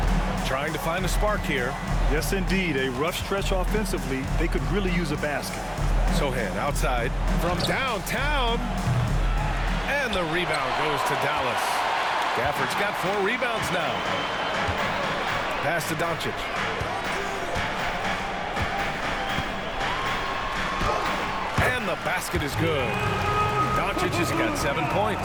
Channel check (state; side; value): identical; both; correlation 1.00